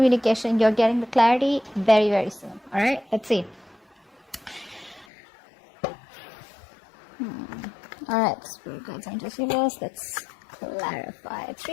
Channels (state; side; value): drops out; right; at 5.1 s